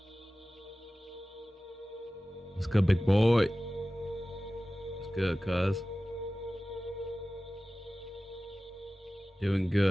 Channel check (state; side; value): normal; both; correlation 0.96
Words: What's good, big boy? What's good, cuz? Doing